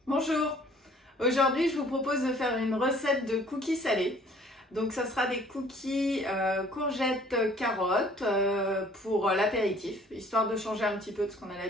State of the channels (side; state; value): both; normal; correlation 0.55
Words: Bonjour, aujourd'hui je vous propose de faire une recette de cookies salés. Donc ça sera des cookies courgettes carottes pour l'apéritif, histoire de changer un petit peu de ce qu'on a